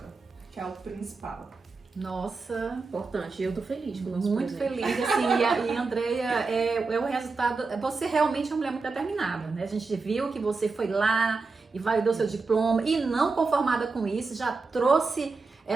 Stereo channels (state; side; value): quieter; left; 4.2 dB